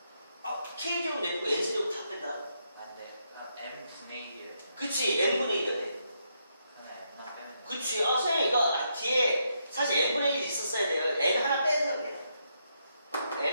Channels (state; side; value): inverted; both; correlation -0.79